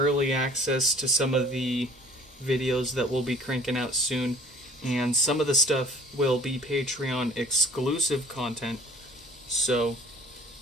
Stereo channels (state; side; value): normal; both; correlation 0.51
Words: access to some of the videos that we'll be cranking out soon, and some of the stuff will be Patreon exclusive content, so